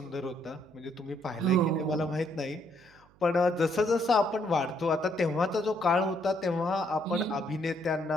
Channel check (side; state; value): right; noise; hum, 29 dB below the sound